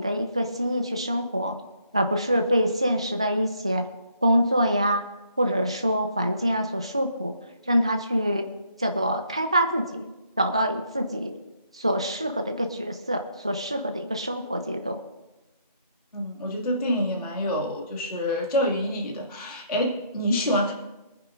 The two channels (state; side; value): inverted; both; correlation -0.69